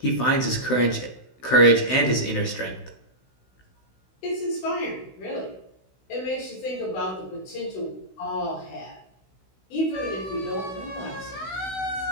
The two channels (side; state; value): right; late; 16 ms